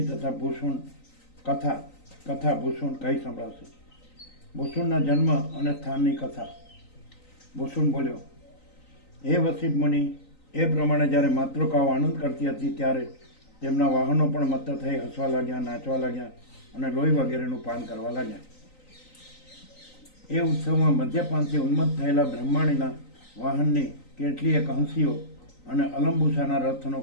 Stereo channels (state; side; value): late; right; 3.9 ms